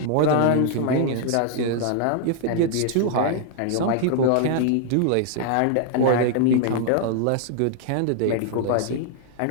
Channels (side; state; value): both; different; correlation -0.01